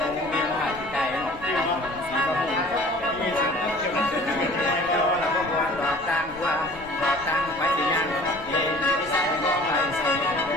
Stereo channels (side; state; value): left; noise; rumble, 21 dB below the sound